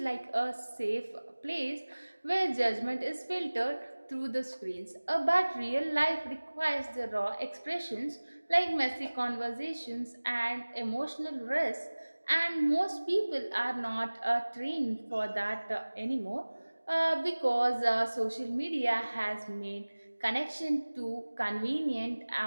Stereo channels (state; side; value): inverted; both; correlation -1.00